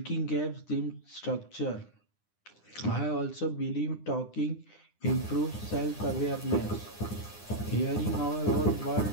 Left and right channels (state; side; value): late; right; 9.8 ms